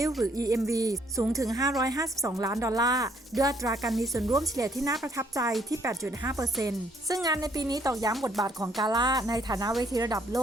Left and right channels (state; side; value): normal; both; correlation 0.67